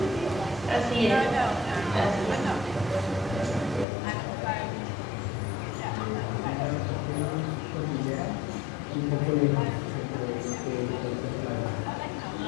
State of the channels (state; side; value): drops out; right; at 3.9 s